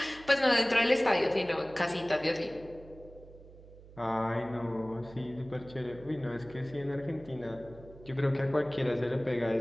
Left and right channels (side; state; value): right; noise; hum, 20 dB below the sound